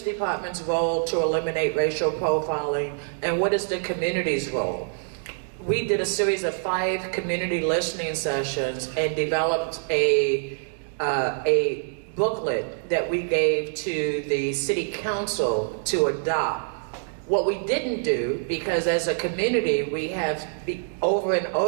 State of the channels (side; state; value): left; silent; digital silence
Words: department's role to eliminate racial profiling and what is the community's role. We did a series of 5 community listening sessions and developed a booklet that we gave to the city council to adopt. What we didn't do, because as a community we have over and